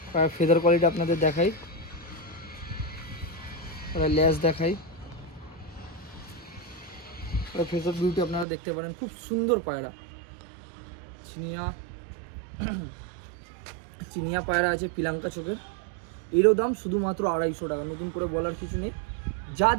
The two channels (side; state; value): left; drops out; at 8.5 s